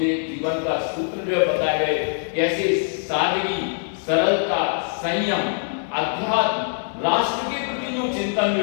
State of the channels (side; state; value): right; silent; 63 dB below the other